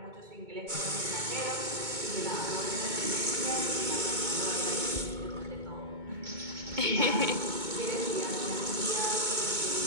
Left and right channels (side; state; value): left; late; 2.2 ms